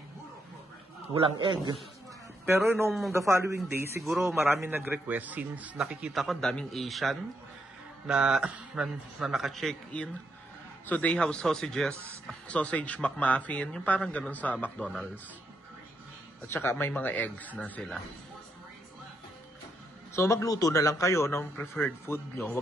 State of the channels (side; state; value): both; normal; correlation 0.79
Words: walang egg. Pero nung the following day, siguro marami nag-request since nakikita ko daming Asian na naka-check-in. So they have sausage McMuffin, yung parang ganun sa McDonald's. At saka may mga eggs na sila. So magluto na lang kayo ng preferred food nyo.